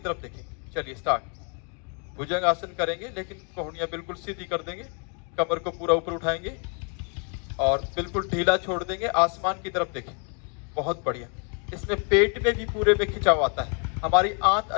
देखेंगे। चलिए स्टार्ट। भुजंग आसन करेंगे लेकिन कोहनियां बिल्कुल सीधी कर देंगे, कमर को पूरा ऊपर उठाएंगे और बिल्कुल ढीला छोड़ देंगे, आसमान की तरफ देखें। बहुत बढ़िया। इसमें पेट में भी पूरे में खिंचाव आता है, हमारी आंत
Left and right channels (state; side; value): quieter; right; 37.8 dB